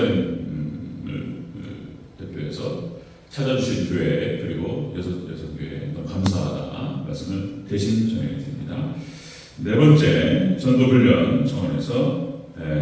대표해서 찾아주신 교회 그리고 여섯 교회 너무 감사하다 말씀을 대신 전해드립니다. 네 번째 전도훈련 정원에서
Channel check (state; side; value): identical; both; correlation 1.00